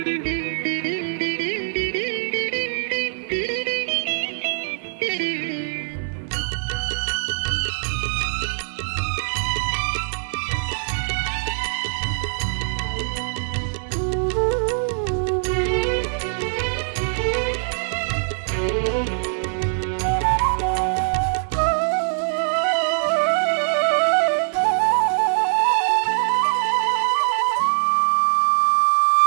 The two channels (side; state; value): left; silent; digital silence